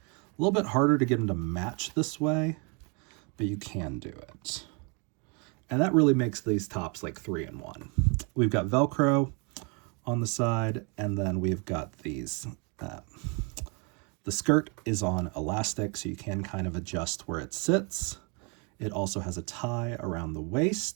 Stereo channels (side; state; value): left; quieter; 33.3 dB